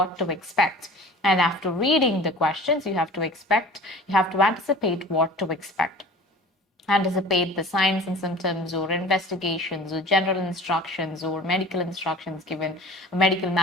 to expect. And after reading the questions, you have to anticipate what to expect. Anticipate the signs and symptoms or investigations or general instructions or medical instructions given, medical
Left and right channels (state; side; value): normal; both; correlation 0.42